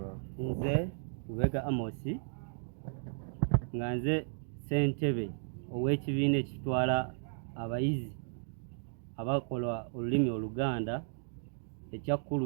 Nze Lubega Amosi nga nze ssentebe ow'ekibiina ekitwala abayizi abakola olulimi Oluganda ekya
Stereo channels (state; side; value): silent; left; digital silence